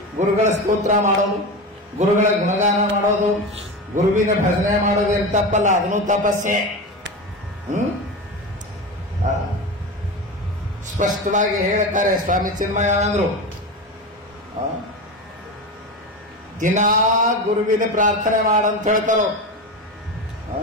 ಗುರುಗಳ ಸ್ತೋತ್ರ ಮಾಡೋದು, ಗುರುಗಳ ಗುಣಗಾನ ಮಾಡೋದು, ಗುರುವಿನ ಭಜನೆ ಮಾಡೋದು ಏನು ತಪ್ಪಲ್ಲ, ಅದನ್ನು ತಪಸ್ಸೆ. ಸ್ಪಷ್ಟವಾಗಿ ಹೇಳ್ತಾರೆ ಸ್ವಾಮಿ ಚಿನ್ಮಯಾನಂದರು. ದಿನಾ ಗುರುವಿನ ಪ್ರಾರ್ಥನೆ ಮಾಡಂತ ಹೇಳ್ತಾರೋ.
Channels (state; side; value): normal; both; correlation 0.23